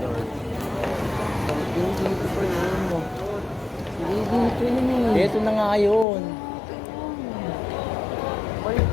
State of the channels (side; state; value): right; drops out; at 6.1 s